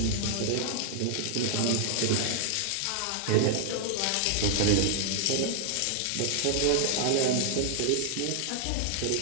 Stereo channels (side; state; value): both; different; correlation 0.00